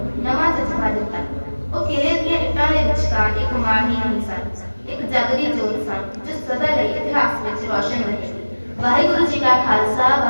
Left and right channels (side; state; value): both; inverted; correlation -1.00